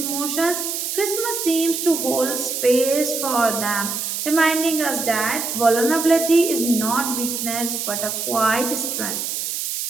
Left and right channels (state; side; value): noise; right; hiss, 3 dB below the sound